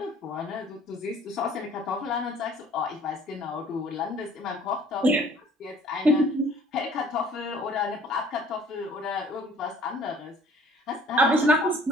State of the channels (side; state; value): both; normal; correlation 0.54